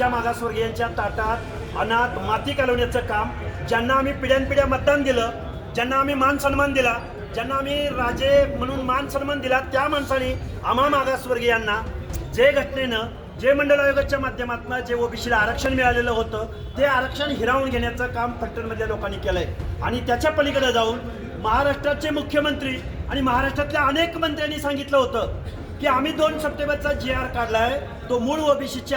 मागासवर्गीयांच्या ताटात अनाथ माती घालवण्याचं काम, ज्यांना आम्ही पिढ्यानपिढ्या मतदान दिलं, ज्यांना आम्ही मान सन्मान दिला, ज्यांना आम्ही राजे म्हणून मान सन्मान दिला, त्या माणसाने आम्हा मागासवर्गीयांना जे घटनेनं, जे मंडळ आयोगाच्या माध्यमातून जे ओबीसीला आरक्षण मिळालेलं होतं ते आरक्षण हिरावून घेण्याचं काम फलटणमधल्या लोकांनी केलं आहे. आणि त्याच्या पलीकडे जाऊन महाराष्ट्राचे मुख्यमंत्री आणि महाराष्ट्रातल्या अनेक मंत्र्यांनी सांगितलं होतं की आम्ही 2 सप्टेंबरचा GR काढला आहे, तो मूळ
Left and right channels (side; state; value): both; identical; correlation 1.00